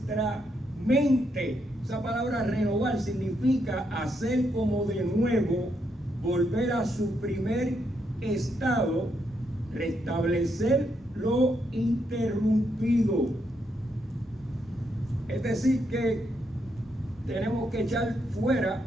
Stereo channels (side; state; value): both; normal; correlation 0.78